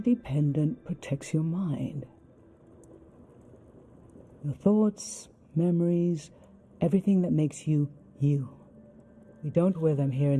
pendant protects your mind. Your thoughts, memories, everything that makes you, you. We don't wear them here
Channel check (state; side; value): identical; both; correlation 1.00